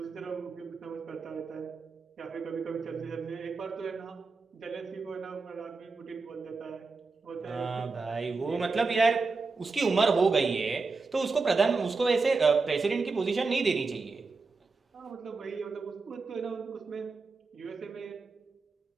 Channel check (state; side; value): quieter; left; 4.2 dB